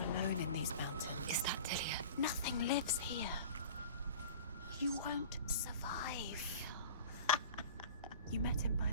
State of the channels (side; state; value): both; inverted; correlation -0.39